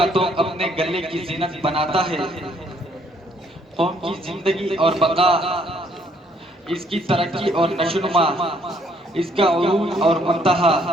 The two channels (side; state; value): both; normal; correlation 0.66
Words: توق اپنے گلے کی زینت بناتا ہے۔ قوم کی زندگی اور بقا، اس کی ترقی اور نشوونما، اس کا عروج اور منتہا